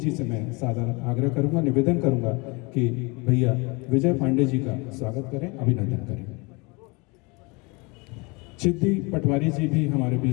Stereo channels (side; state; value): right; quieter; 27.9 dB